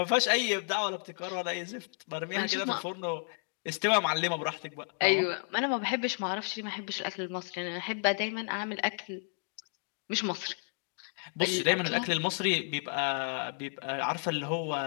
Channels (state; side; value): silent; right; 56 dB below the other